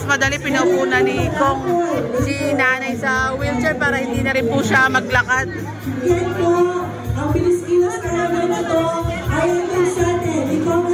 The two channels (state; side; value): identical; both; correlation 1.00